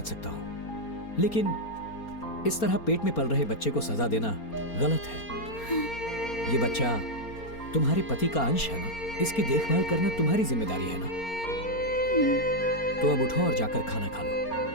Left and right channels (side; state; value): right; late; 4.3 ms